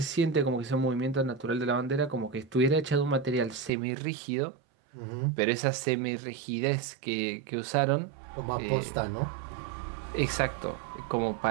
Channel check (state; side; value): drops out; left; at 3.7 s